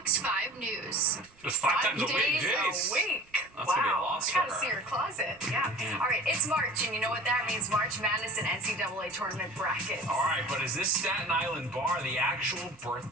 5 News. Just 5 times a week, days jeez. a week. That's Wow. gonna be a loss I for gotta her. see her closet. Yeah. All right, it's March, and you know what that means. March Madness and NCAA tournament brackets. All right, but is this Staten Island bar the actual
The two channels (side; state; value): right; noise; rumble, 30 dB below the sound